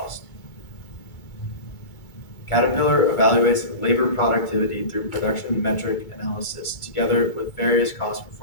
Caterpillar evaluates labor productivity through production metric analysis together with various cost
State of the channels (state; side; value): late; right; 2.3 ms